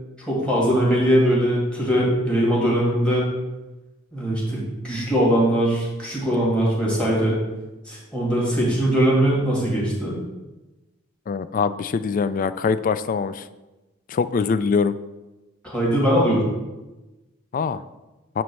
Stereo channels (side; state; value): both; normal; correlation 0.58